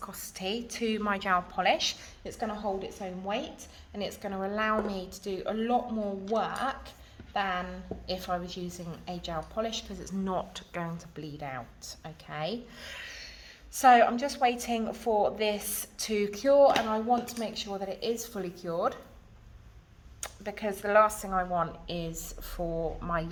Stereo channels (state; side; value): identical; both; correlation 1.00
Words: to my gel polish. It's going to hold its own weight, and it's going to allow me to do a lot more work than if I was using a gel polish, because it's not going to bleed out, okay? So I'm just waiting for this to cure, and I want to make sure that it is fully cured, because the last thing I want is for my